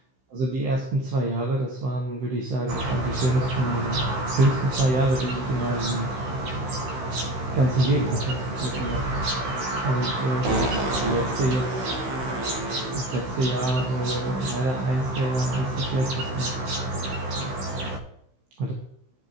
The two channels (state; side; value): late; left; 16 ms